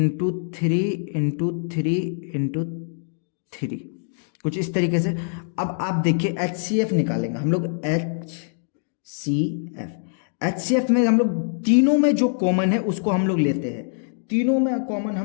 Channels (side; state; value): right; silent; digital silence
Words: 3 इंटू 3 इंटू 3, कुछ इस तरीके से। अब आप देखिए HCF निकालेंगे हम लोग। HCF में हम लोग तीनों में जो कॉमन है उसको हम लोग लेते हैं। तीनों में कॉमन